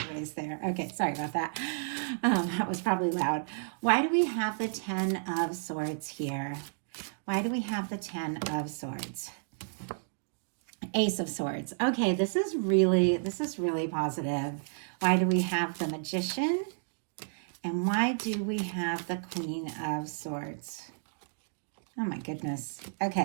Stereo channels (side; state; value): left; silent; digital silence